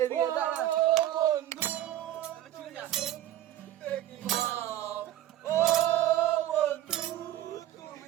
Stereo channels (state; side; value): quieter; left; 13.1 dB